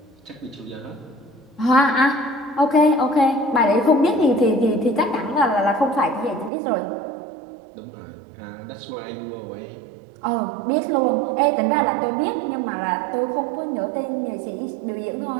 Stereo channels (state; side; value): drops out; left; at 6.5 s